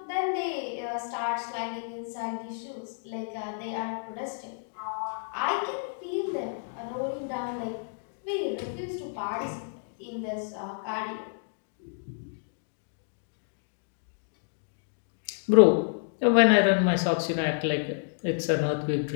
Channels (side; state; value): right; silent; digital silence